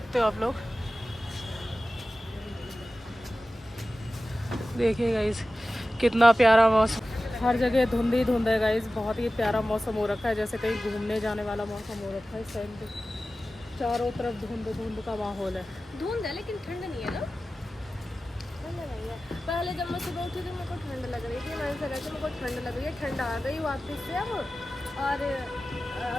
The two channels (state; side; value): normal; both; correlation 0.95